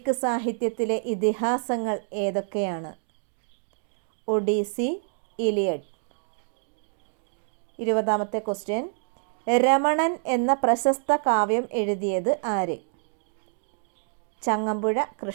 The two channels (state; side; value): silent; left; digital silence